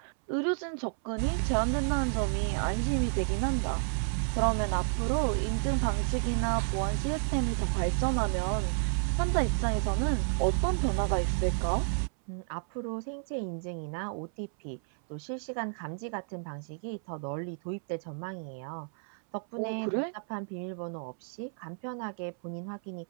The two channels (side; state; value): left; silent; 57 dB below the other